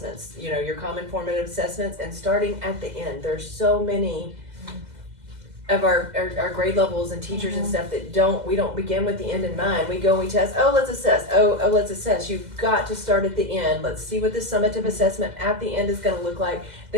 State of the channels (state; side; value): late; left; 2.0 ms